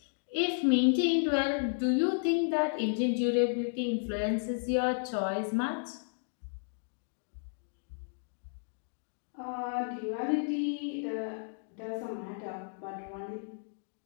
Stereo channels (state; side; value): silent; right; digital silence